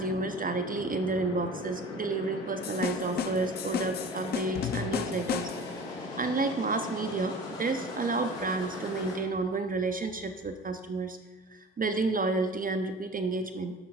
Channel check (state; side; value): normal; both; correlation 0.40